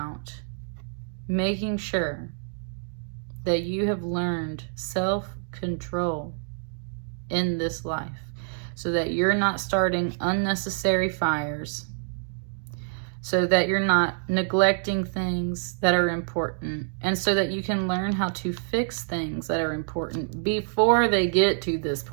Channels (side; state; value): left; silent; digital silence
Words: making sure that you have learned self-control in this life, so that you're not starting unnecessary fires, so that you're not neglecting things that are important, and so that you can learn how to fix things that are important before they get to this